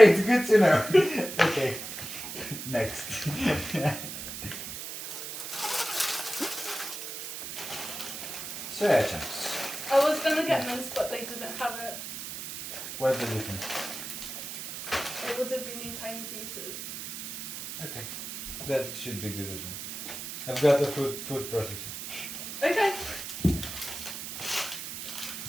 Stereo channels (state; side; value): noise; right; hiss, 8 dB below the sound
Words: good to know. Okay, next. Soya chunks. I was gonna get mince, but they didn't have it. What's the difference? It would have been in tiny pieces. Okay, that should be good as well. I've got the food processor. Okay.